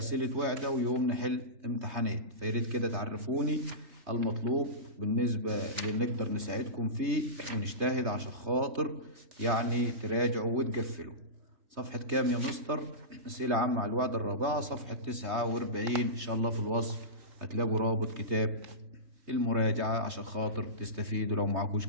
وحدة ويوم نحل امتحانات. فياريت كده تعرفوني المطلوب بالنسبة اللي نقدر نساعدكم فيه ونجتهد عشان خاطر يعني تراجعوا وتقفلوا. صفحة كام يا مستر؟ أسئلة عامة على الوحدة الرابعة، صفحة 49. إن شاء الله في الوصف هتلاقوا رابط كتاب المراجعة عشان خاطر تستفيدوا لو معكوش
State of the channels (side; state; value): left; late; 3.2 ms